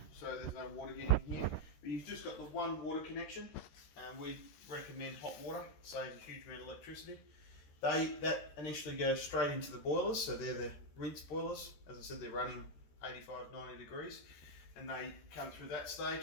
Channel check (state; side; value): late; right; 13 ms